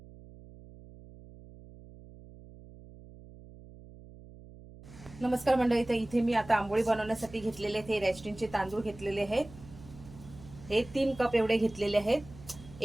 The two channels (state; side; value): noise; right; hum, 19 dB below the sound